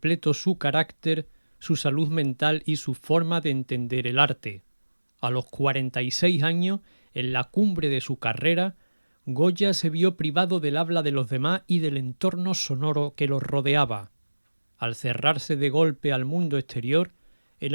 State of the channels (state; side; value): inverted; both; correlation -1.00